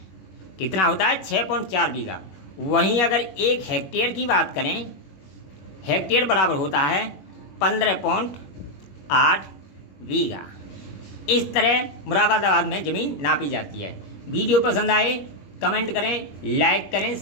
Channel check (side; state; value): right; late; 21 ms